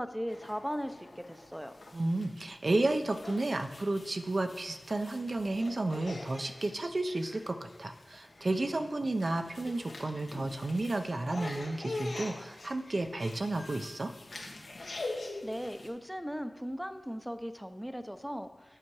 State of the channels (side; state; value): both; normal; correlation 0.97